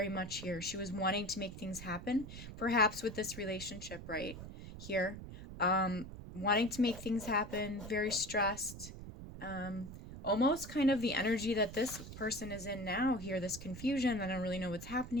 much here. She was wanting to make things happen, perhaps with this relationship right here. Wanting to make things happen, very stressed. Almost kind of the energy that this person is in now here, this confusion. I don't really know what's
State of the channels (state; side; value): noise; right; rumble, 11 dB below the sound